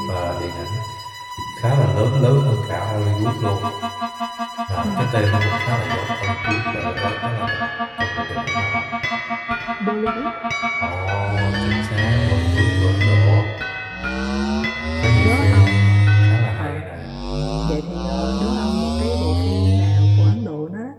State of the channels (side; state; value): both; identical; correlation 1.00